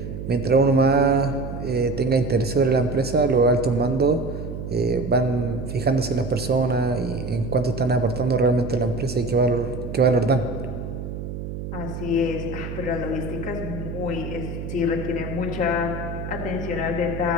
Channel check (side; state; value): right; noise; hum, 7 dB below the sound